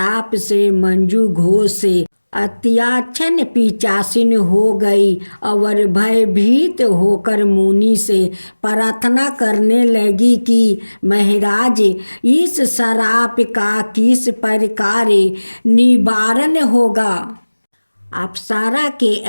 से मंजू घोष अत्याचन पिशाचिन हो गई और भयभीत होकर मुनि से प्रार्थना करने लगी कि महाराज, इस शराप का किस प्रकार निवारण होगा? अप्सरा के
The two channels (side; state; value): both; inverted; correlation -1.00